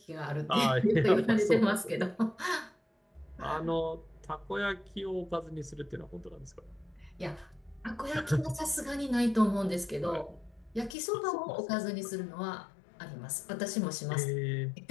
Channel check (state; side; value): drops out; right; at 11.0 s